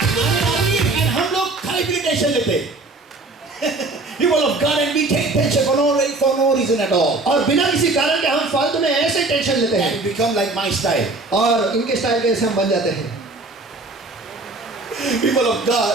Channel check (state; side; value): quieter; left; 3.2 dB